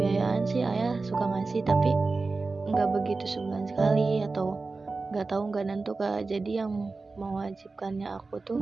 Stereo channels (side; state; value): left; quieter; 3.8 dB